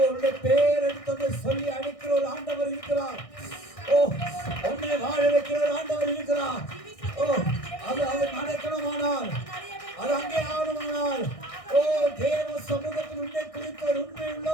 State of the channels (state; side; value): late; right; 1.6 ms